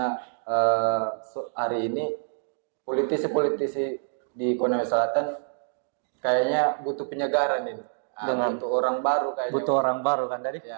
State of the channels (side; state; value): left; silent; digital silence